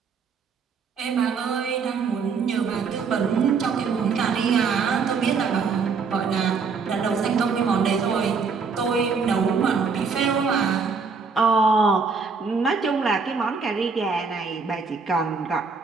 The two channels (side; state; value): left; quieter; 5.2 dB